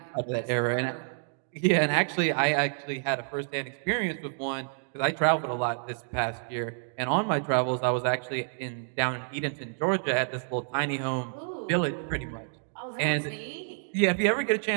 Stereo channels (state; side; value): silent; left; digital silence